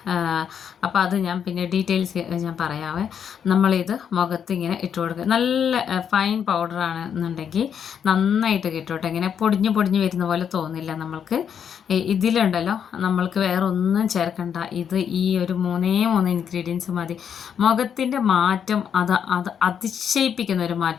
അപ്പോൾ അത് ഞാൻ പിന്നെ ഡീറ്റെയിൽസ് ഞാൻ പറയാവേ. നമ്മളിത് മുഖത്ത് ഇങ്ങനെ ഇട്ട് കൊടുക്കുക. നല്ല ഫൈൻ പൗഡറാണ് എന്നുണ്ടെങ്കിൽ നന്നായിട്ട് കിട്ടും. ഇങ്ങനെ പൊടിഞ്ഞ് വരുന്ന പോലെ തോന്നില്ല നമ്മൾക്ക്. ഇതിലുണ്ടല്ലോ നമ്മൾക്ക് വേറെ ഒന്നും ചേർക്കണ്ട. ഇത് ഈ ഒരു 3 ഇൻഗ്രീഡിയൻസ് മതി. മുഖത്തിൻ്റെ മാറ്റം അത് അതിശയിപ്പിക്കുന്ന ഒരു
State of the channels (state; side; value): quieter; right; 8.0 dB